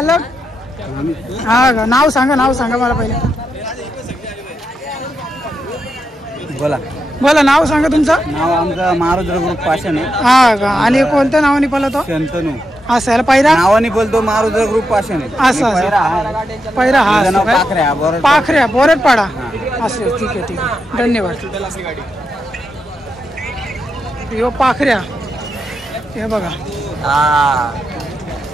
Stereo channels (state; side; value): normal; both; correlation 0.85